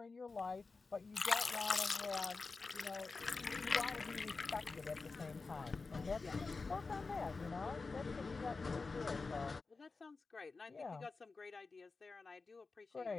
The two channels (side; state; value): right; quieter; 4.1 dB